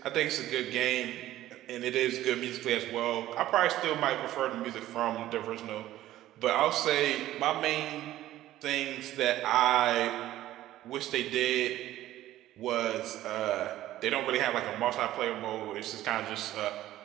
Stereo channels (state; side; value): quieter; left; 14.2 dB